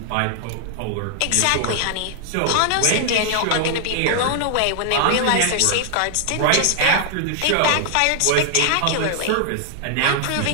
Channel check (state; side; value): different; both; correlation 0.00